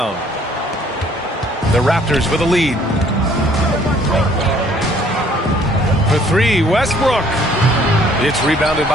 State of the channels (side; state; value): both; normal; correlation 0.60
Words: The Raptors with a lead. For three, Westbrook. It's rebounded